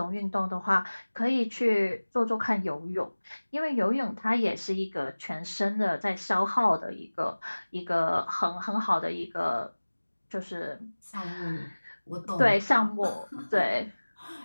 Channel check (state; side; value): inverted; both; correlation -1.00